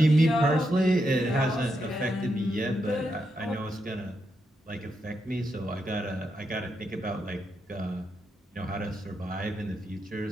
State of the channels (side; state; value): both; normal; correlation 0.83